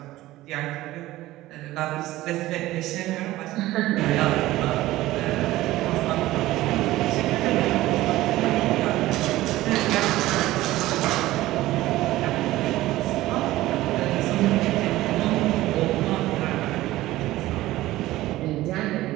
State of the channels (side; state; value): left; quieter; 16.6 dB